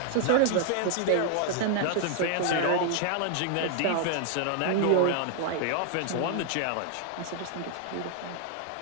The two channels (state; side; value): different; both; correlation 0.00